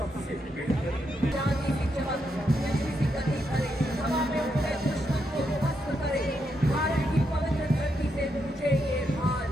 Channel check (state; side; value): normal; both; correlation 0.81